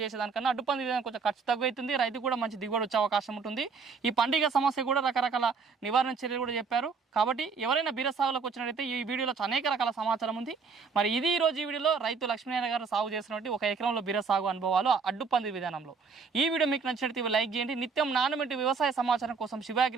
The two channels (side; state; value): left; quieter; 5.2 dB